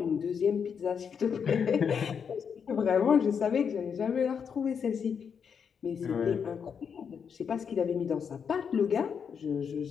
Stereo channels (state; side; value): quieter; right; 6.8 dB